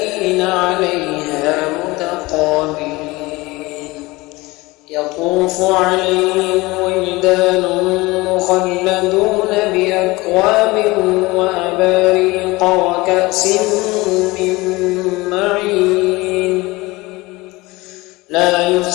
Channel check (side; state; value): right; quieter; 21.8 dB